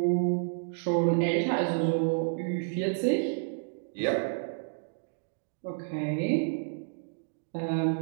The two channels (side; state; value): left; silent; digital silence